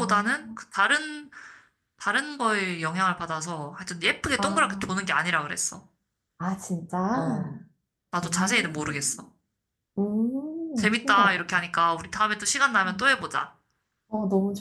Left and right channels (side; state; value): both; identical; correlation 1.00